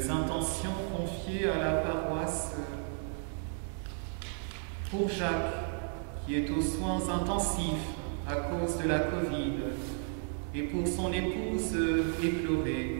intentions confiées à la paroisse pour Jacques, qui est aux soins intensifs à cause de la Covid, et pour son épouse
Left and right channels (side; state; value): left; silent; 56 dB below the other